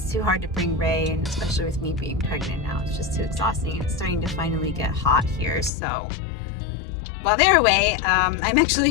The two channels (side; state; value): right; drops out; at 5.7 s